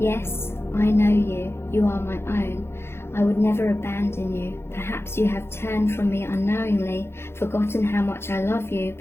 I know you. You are my own. I would never abandon you. Perhaps you have turned from me unknowingly, forgotten how much I love you,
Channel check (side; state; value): right; late; 0.12 ms